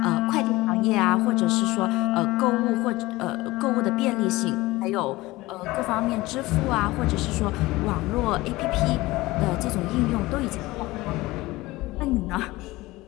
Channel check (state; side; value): quieter; right; 19.7 dB